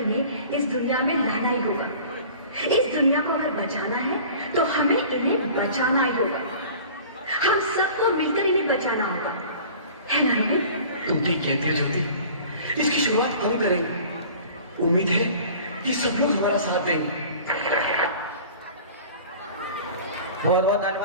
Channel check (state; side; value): inverted; both; correlation -0.44